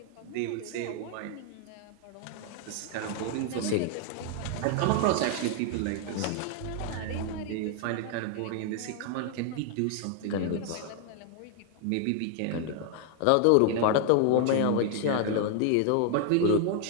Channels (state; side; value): different; both; correlation 0.00